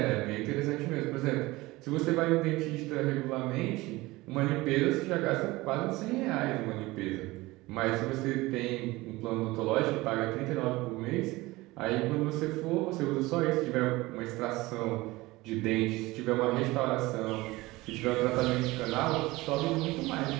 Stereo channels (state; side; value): quieter; left; 20.4 dB